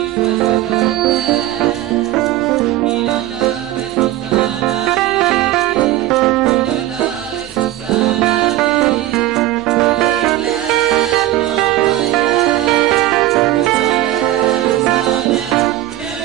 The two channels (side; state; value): left; quieter; 14.8 dB